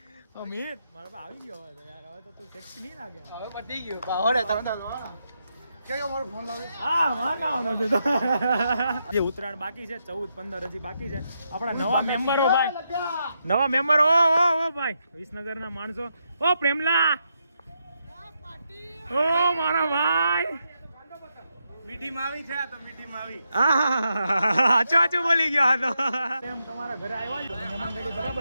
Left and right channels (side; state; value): both; inverted; correlation -0.82